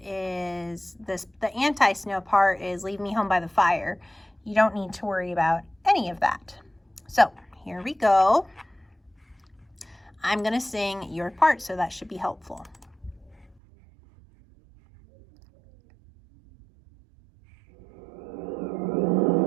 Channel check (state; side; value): drops out; left; at 13.6 s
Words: is the anti-snow part is leave me home by the fire. You don't need to worry about any of that. So here we go. I'm going to sing your part, so that should be helpful.